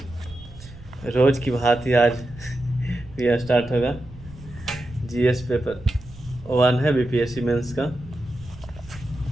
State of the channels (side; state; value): right; noise; rumble, 18 dB below the sound